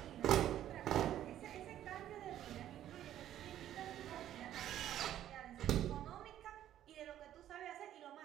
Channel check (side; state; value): left; quieter; 11.8 dB